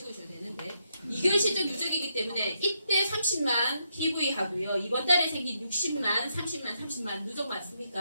되는데 2개월 실적 누적이기 때문에 이때 30만 PV 하고요. 이번 달에 생긴 60만, 30만 누적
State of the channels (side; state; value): both; inverted; correlation -0.79